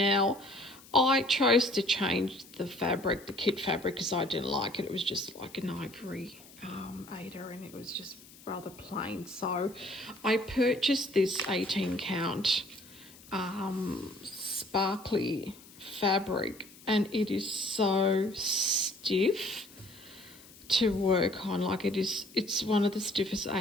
I chose to change the fabric, the kit fabric, because I didn't like it. It was just like an ivory Aida, and it was just rather plain. So I purchased this 18 count sparkly fabric, and it is so stiff to work on. Like, it's one of the stiffest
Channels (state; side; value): noise; left; hiss, 22 dB below the sound